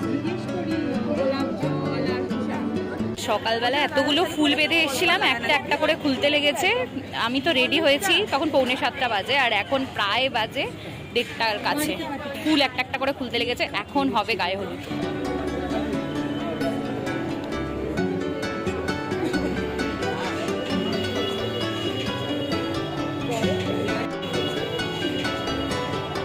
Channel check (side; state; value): both; identical; correlation 1.00